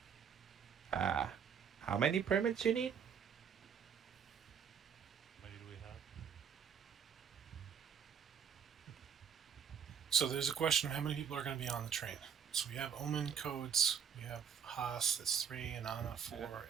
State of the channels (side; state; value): left; quieter; 7.5 dB